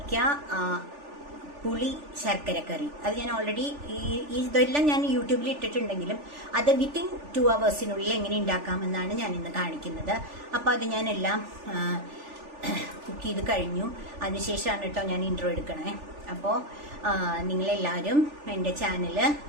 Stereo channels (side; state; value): left; late; 3.4 ms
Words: പുളി ശർക്കരക്കറി, അത് ഞാൻ ഓൾറെഡി ഇതെല്ലാം ഞാൻ യൂട്യൂബിൽ ഇട്ടിട്ടുണ്ടെങ്കിലും അത് വിത്തിൻ 2 hours എങ്ങനെ ഉണ്ടാക്കാമെന്നാണ് ഞാൻ ഇന്ന് കാണിക്കുന്നത്. അപ്പോൾ അത് ഞാനെല്ലാം കുക്ക് ചെയ്ത് കഴിഞ്ഞു. അതിനുശേഷമാണ് കേട്ടോ ഞാൻ ഇൻട്രോ എടുക്കണേ. അപ്പോൾ നിങ്ങളെല്ലാവരും എൻ്റെ ചാനൽ,